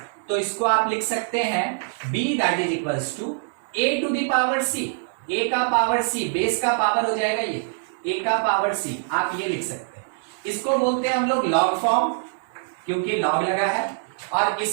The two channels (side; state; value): left; silent; digital silence